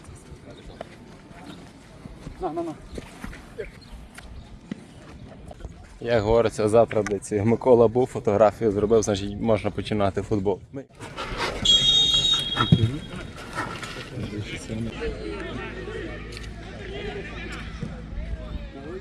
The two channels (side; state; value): both; identical; correlation 1.00